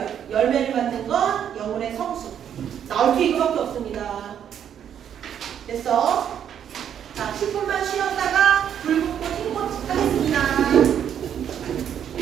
열매를 맡는 건 영혼의 성숙. 나올 게 이거밖에 없습니다. 됐어?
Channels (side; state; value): left; quieter; 9.1 dB